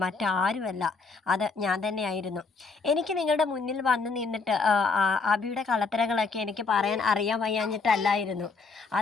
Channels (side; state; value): right; quieter; 4.5 dB